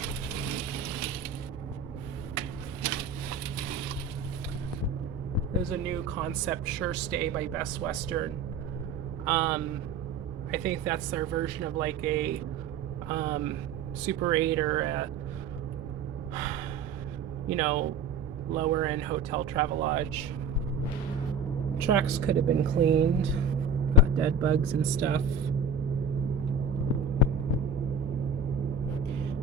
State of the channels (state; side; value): quieter; left; 4.1 dB